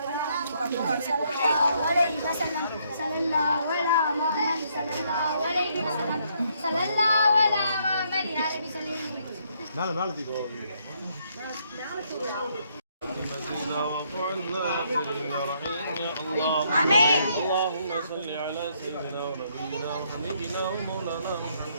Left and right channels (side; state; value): both; inverted; correlation -0.71